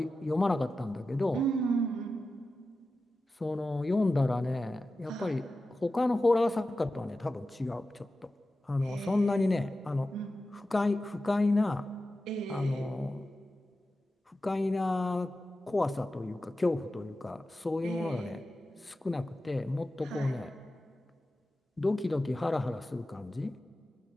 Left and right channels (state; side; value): normal; both; correlation 0.93